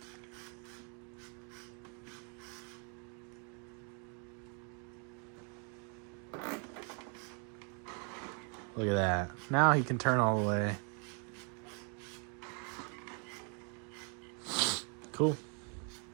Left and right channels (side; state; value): left; quieter; 38.5 dB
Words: Look at that. Now he can turn all the way. Cool.